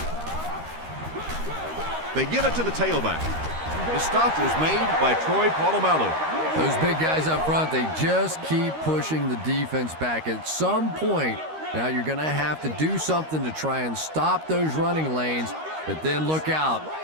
They give it to the tailback. The stop was made by Troy Polamalu. Those big guys up front, they just keep pushing the defense back. At some point, now you're going to have to do something to try and stop those running lanes, but then look out.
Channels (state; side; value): late; left; 13 ms